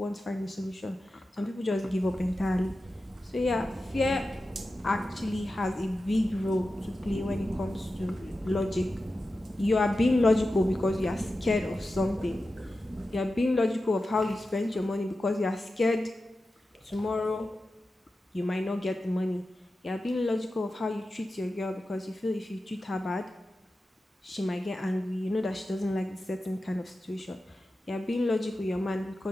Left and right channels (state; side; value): normal; both; correlation 0.93